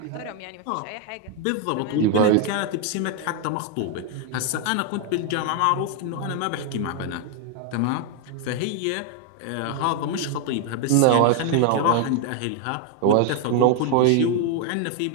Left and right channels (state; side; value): different; both; correlation 0.01